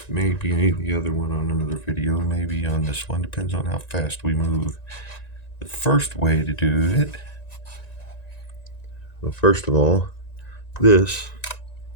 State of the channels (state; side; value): late; right; 1.9 ms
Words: maybe the other one on another video, maybe on this one, depends on how fast we move. The first way to do it, well, first of all, this,